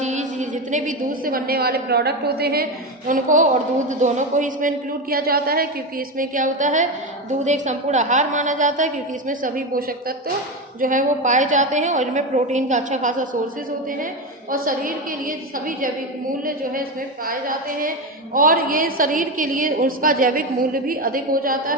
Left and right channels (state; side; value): normal; both; correlation 0.16